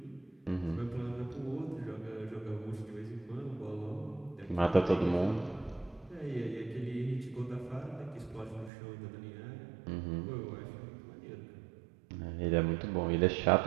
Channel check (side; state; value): left; drops out; at 8.7 s